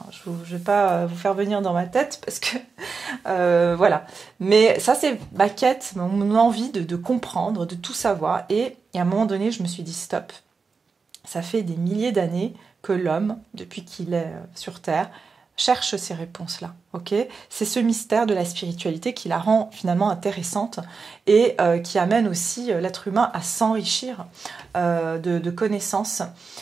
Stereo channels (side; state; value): left; quieter; 4.9 dB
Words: je vais pas vous faire venir dans ma tête parce que voilà. Mais ça, c'est ma quête, mon envie de comprendre, de tout savoir. Et à un moment donné, je me suis dit, stop. Ça fait des milliers d'années que l'homme, depuis qu'il est sur Terre, cherche ces réponses-là. Ok, c'est ce mystère de la spiritualité qui la rend finalement intéressante et qui amène aussi l'être humain à s'enrichir de connaissances.